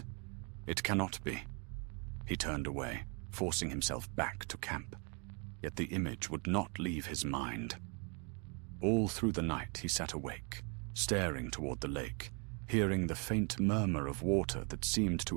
"It cannot be." He turned away, forcing himself back to camp. Yet the image would not leave his mind. All through the night he sat awake, staring toward the lake, hearing the faint murmur of water that seemed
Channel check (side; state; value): left; quieter; 35.2 dB